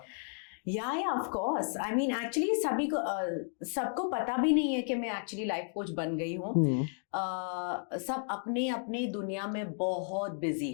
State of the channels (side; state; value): right; silent; digital silence